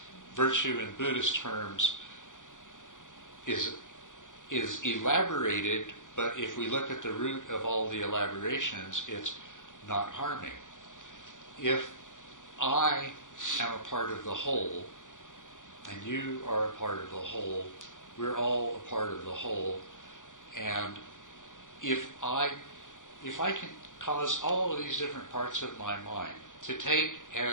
Virtue in Buddhist terms is elaborated, but if we look at the root of all the elaborations, it's not harming. If I am a part of the whole, and you are a part of the whole, we're all a part of the whole, and if I can cause all of these different parts of my mind to take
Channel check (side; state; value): right; late; 0.87 ms